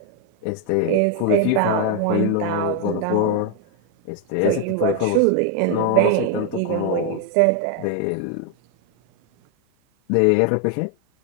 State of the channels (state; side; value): different; both; correlation 0.01